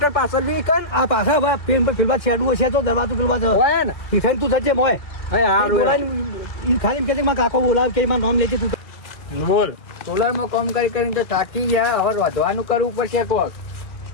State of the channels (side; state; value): right; late; 1.5 ms